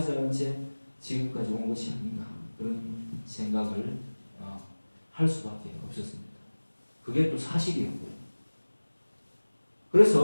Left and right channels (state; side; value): inverted; both; correlation -1.00